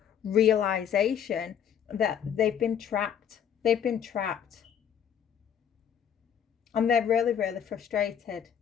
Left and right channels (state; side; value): quieter; right; 8.7 dB